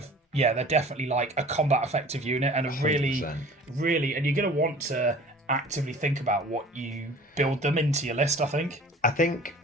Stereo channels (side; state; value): both; normal; correlation 0.45